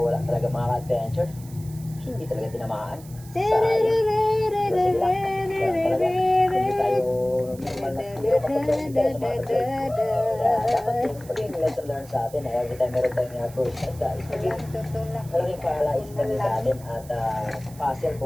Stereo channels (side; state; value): right; noise; hiss, 21 dB below the sound